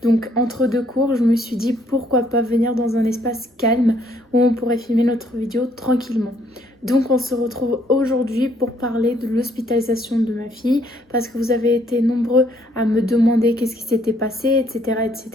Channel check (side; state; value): both; normal; correlation 0.67